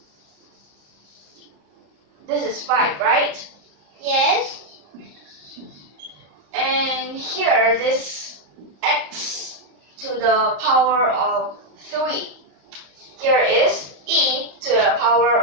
This is 5, right? Yes. And here, this x to the power of 3. Here is e to the power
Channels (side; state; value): left; late; 34 ms